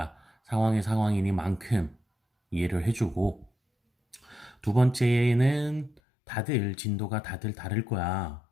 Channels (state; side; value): drops out; right; at 6.0 s